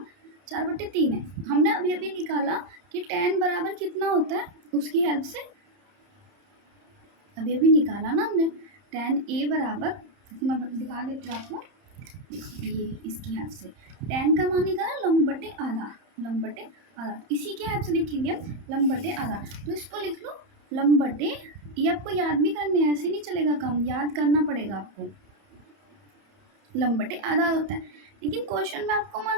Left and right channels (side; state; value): left; late; 30 ms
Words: 4/3 है। हमने अभी अभी निकाला कि tan बराबर कितना होता है, उसकी हेल्प से अभी अभी निकाला ना हमने। tan a बराबर, मैं दिखा देती हूँ आपको, ये इसकी हेल्प से tan का मान निकाला लंब बटे आधा, लंब बटे आधा, इसी के हेल्प से लिखेंगे हम लंब बटे आधा। तो इसको लिख लो लंब बटे, ये आपको याद भी करने हैं, ऐसे नहीं चलेगा काम, याद करना पड़ेगा आपको। लंब बटे आधा होता है, लेकिन क्वेश्चन में आपको